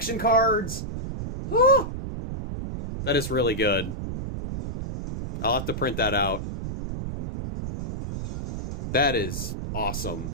cards. Oh, that is really good. I'll have to print that out. That is awesome.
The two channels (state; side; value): noise; right; rumble, 6 dB below the sound